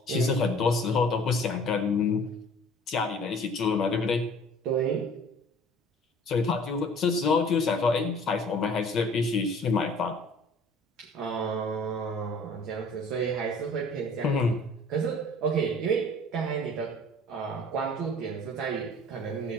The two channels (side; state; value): both; normal; correlation 0.50